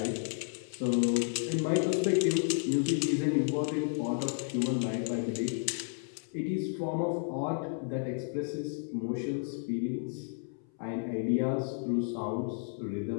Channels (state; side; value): silent; right; 56 dB below the other